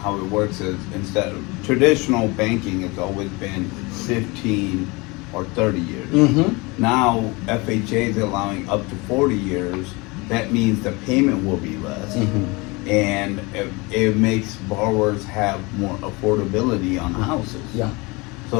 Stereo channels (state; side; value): quieter; right; 25.8 dB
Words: how it works is instead of traditional banking has always been 15 or 30 years. Now FHA is allowing up to 40 years. That means the payment will be less. And it makes borrowers have more affordability on houses. Yeah. So